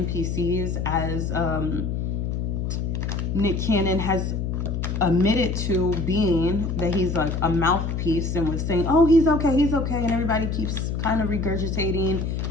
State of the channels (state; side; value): noise; left; hum, 2 dB below the sound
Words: as Nick Cannon has admitted to being, that he's like a mouthpiece and was saying, oh, he's okay, and everybody keeps kind of regurgitating